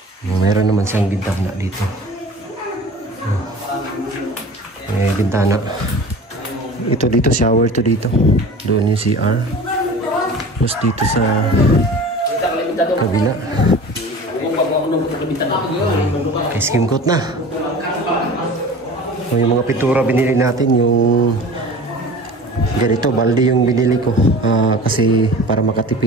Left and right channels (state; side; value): normal; both; correlation 0.39